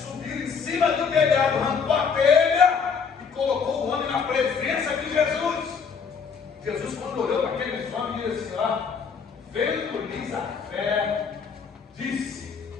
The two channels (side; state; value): right; quieter; 6.0 dB